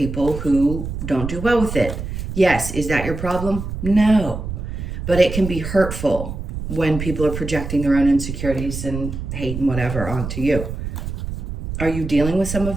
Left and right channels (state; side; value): noise; right; rumble, 6 dB below the sound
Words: who don't do well with it? Yes. Is that your problem? No. But it can be hurtful when people are projecting their own insecurities and hate and whatever onto you. Are you dealing with some